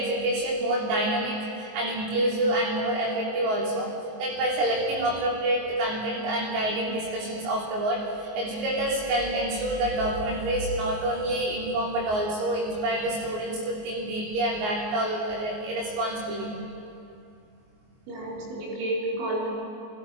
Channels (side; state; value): left; late; 24 ms